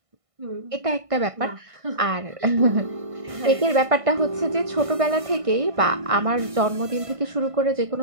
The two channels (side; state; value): left; late; 1.6 ms